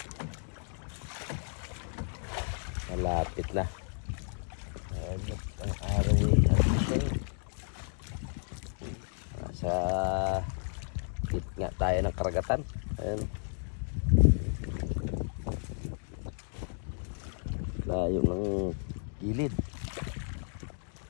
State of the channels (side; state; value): right; silent; 56 dB below the other